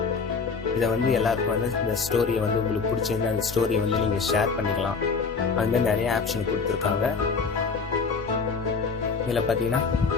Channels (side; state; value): right; quieter; 4.9 dB